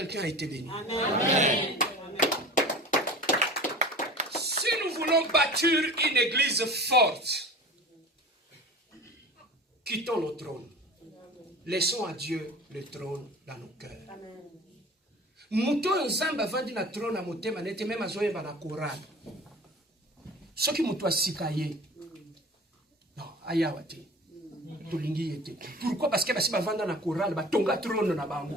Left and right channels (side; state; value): both; normal; correlation 0.39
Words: a été béni? Amen. Si nous voulons bâtir une église forte, quittons nos trônes. Laissons à Dieu le trône dans nos cœurs. Muto nzamba vandi na trône à motema nete même azoye ba na Coran. Ce qui muto asikaye. Non, ayawate. Pourquoi? Parce que si tu vas dans la chorale, tu vas trône na bango.